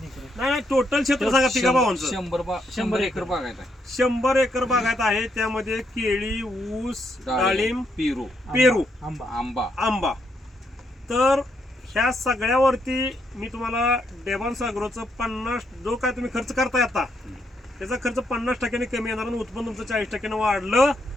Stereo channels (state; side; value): normal; both; correlation 0.77